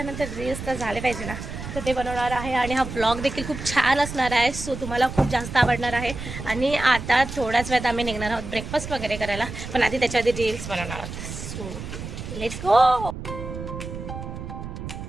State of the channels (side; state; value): right; noise; rumble, 9 dB below the sound